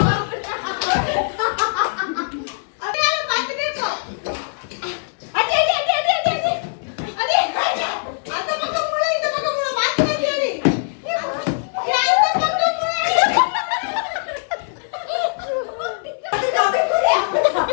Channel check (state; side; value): silent; right; digital silence